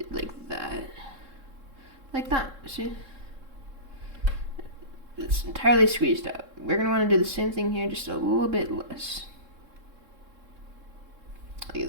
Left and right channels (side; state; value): left; late; 3.7 ms